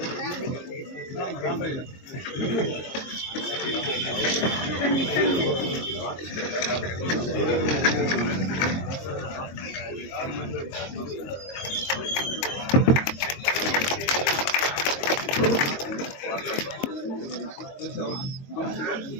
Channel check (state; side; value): late; right; 22 ms